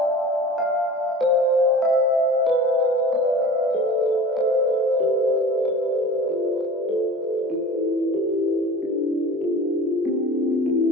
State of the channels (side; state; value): both; normal; correlation 0.39